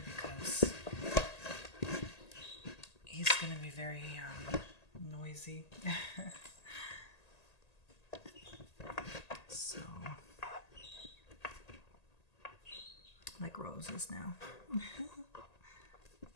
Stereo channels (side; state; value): right; late; 1.8 ms